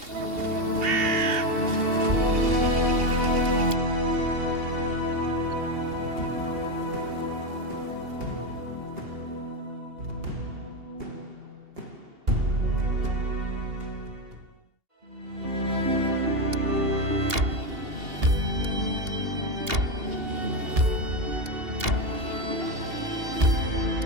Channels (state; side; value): late; left; 2.8 ms